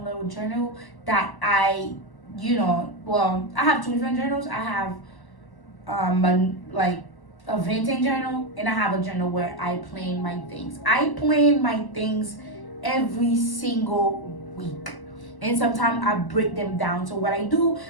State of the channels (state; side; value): late; right; 1.1 ms